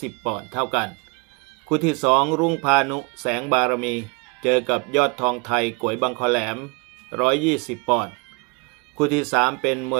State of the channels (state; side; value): quieter; left; 30.9 dB